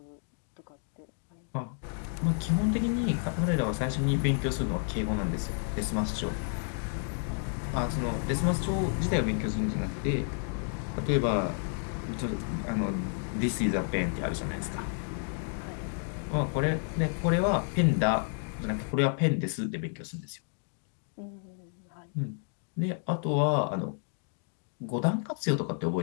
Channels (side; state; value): right; silent; 57 dB below the other